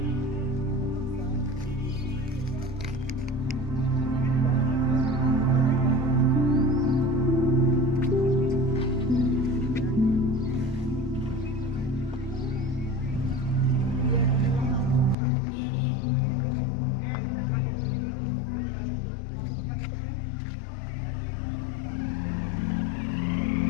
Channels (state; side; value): drops out; right; at 15.2 s